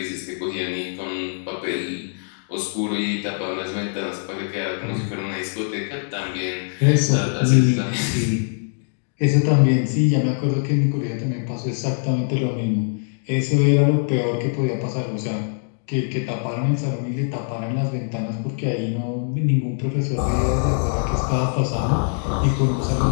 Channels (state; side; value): silent; right; 64 dB below the other